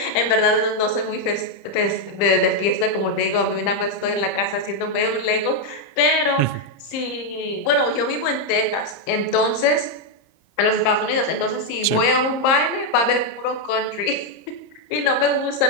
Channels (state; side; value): late; right; 30 ms